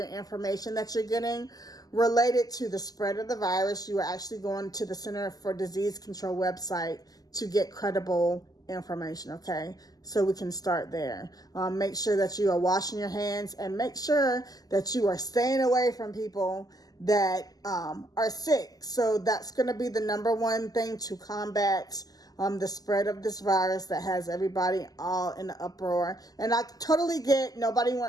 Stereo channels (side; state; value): right; late; 0.18 ms